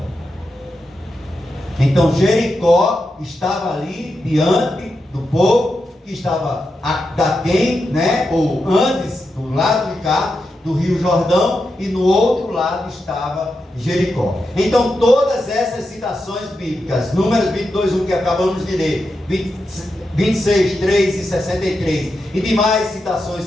Então Jericó estava ali diante do povo que estava daquém, né? Ou antes, do lado de cá, do rio Jordão, e no outro lado estava Jericó. Então todas essas citações bíblicas, Números 22:1 que acabamos de ler, 26:3 e 63, e demais citações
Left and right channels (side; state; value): both; normal; correlation 0.87